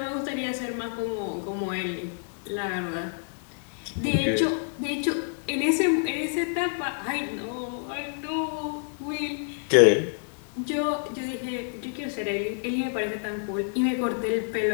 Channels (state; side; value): silent; right; digital silence